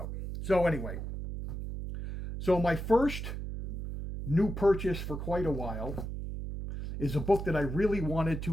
So anyway, so my first new purchase for quite a while is a book that I really wanted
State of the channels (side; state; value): right; noise; hum, 6 dB below the sound